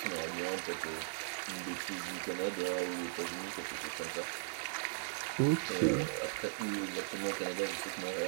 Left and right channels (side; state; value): left; silent; 52 dB below the other